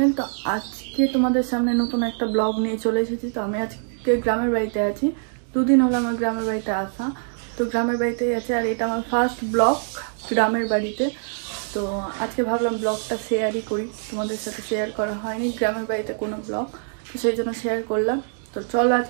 তো আজকে তোমাদের সামনে নতুন একটা ব্লগ নিয়ে চলে এসেছি। তো আমি আজকে গ্রামের বাড়িতে আছি। দুদিন হলো আমার গ্রামের বাড়িতে আসা। তো গ্রামের বাড়িতেই আছে, আর এটা আমার ফার্স্ট ব্লগ গ্রামের বাড়িতে। তো আজকে ভাবলাম ব্লগটা শেয়ারই করি, তোমাদের সাথে শেয়ার করা হয়নি গ্রামের বাড়িতে কোনো ব্লগ, তো সেই জন্য শেয়ার করলাম। তো চলো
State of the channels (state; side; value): silent; left; digital silence